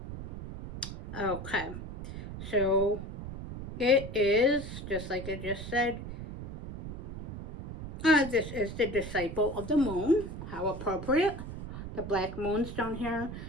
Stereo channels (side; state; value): right; noise; rumble, 9 dB below the sound